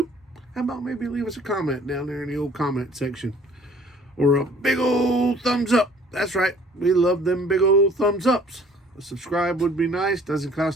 how about maybe leave us a comment down there in the old comment section, or a big old thumbs up. That's right, we love them big old thumbs ups. A subscribe would be nice, doesn't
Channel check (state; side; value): normal; both; correlation 0.54